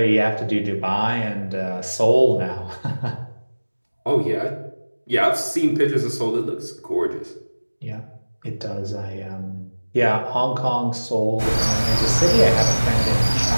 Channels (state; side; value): inverted; both; correlation -1.00